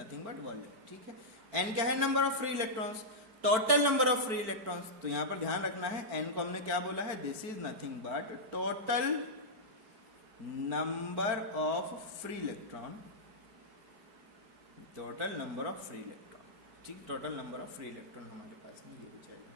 but volume, ठीक है। n क्या है, number of free electrons, total number of free electrons, तो यहां पर ध्यान रखना है n को हमने क्या बोला है, this is nothing but total number of free electron, ठीक, total number of free electron हमारे पास में ये हो जाएगा,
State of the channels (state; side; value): late; left; 4.5 ms